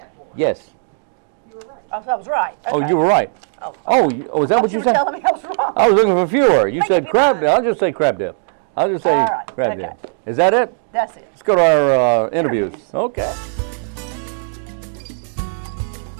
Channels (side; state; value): left; silent; digital silence